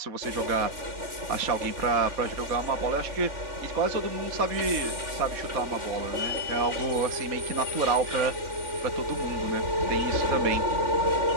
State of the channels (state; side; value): late; left; 3.5 ms